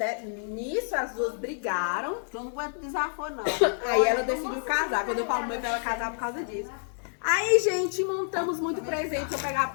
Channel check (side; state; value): right; silent; digital silence